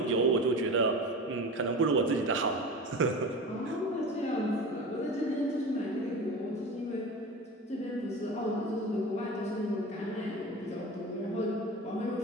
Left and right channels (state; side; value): normal; both; correlation 0.32